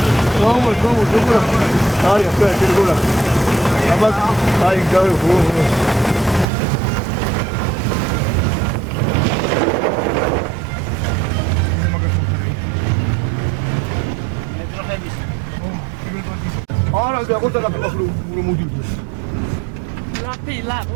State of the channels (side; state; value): left; drops out; at 6.5 s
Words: Vamos, bola. Targa, quiero bola. Vamos, ay, claro, Ahora, agora tá no mundo.